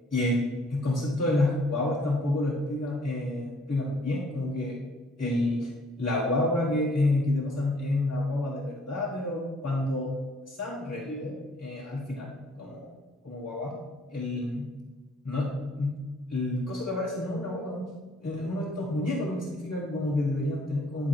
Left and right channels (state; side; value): normal; both; correlation 0.61